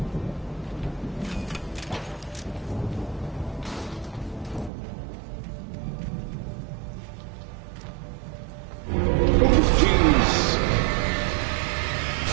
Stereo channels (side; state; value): left; drops out; at 4.7 s